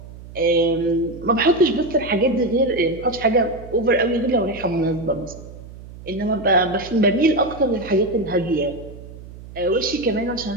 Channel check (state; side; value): noise; right; hum, 16 dB below the sound